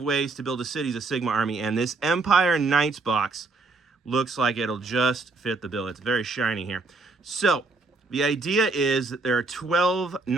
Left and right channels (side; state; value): left; quieter; 3.6 dB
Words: to build a Cities of Sigmar army, and this Empire Knights box looks like it'll just fit the bill. It's very shiny here. So the idea is that there are 12